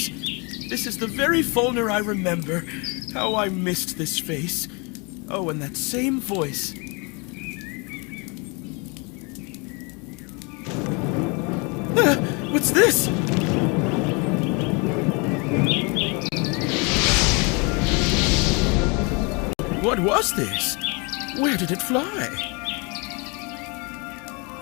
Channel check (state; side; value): quieter; right; 30.8 dB